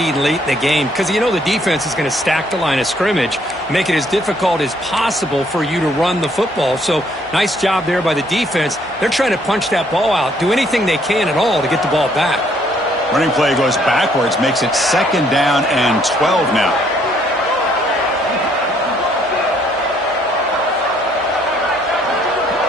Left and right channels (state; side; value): normal; both; correlation 0.66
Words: late in the game because you know the defense is going to stack the line of scrimmage, make it as difficult as possible for you to run the football. So nice job there by the defense. They're trying to punch that ball out, do anything they can at all to get the ball back. Running play goes backwards, makes it 2nd down and 12 now.